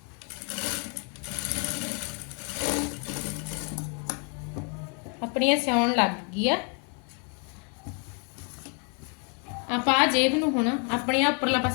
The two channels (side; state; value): right; quieter; 38.0 dB